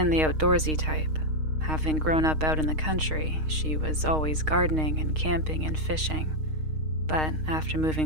the outdoorsy type. Having grown up out in the country, she was always gardening and camping and fishing. But after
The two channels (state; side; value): late; left; 6.4 ms